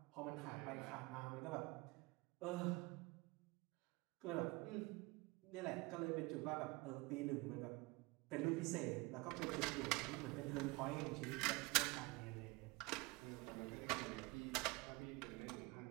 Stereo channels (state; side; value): quieter; left; 24.5 dB